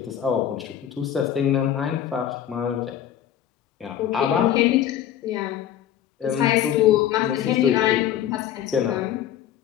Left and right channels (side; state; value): right; quieter; 10.6 dB